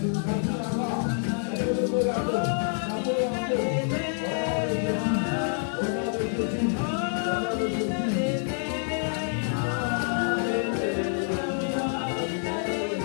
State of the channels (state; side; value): silent; right; 60 dB below the other